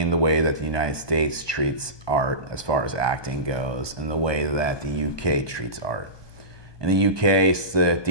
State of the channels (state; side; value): late; right; 1.2 ms